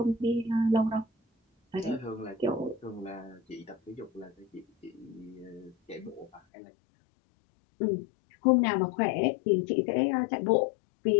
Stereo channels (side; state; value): right; drops out; at 6.4 s